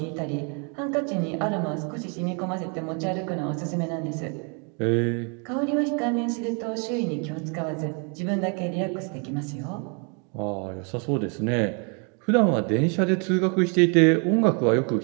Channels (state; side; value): quieter; left; 36.8 dB